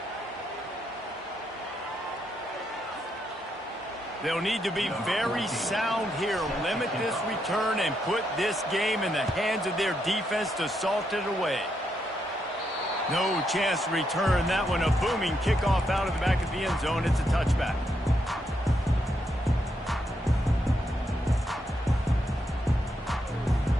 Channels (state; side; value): normal; both; correlation 0.80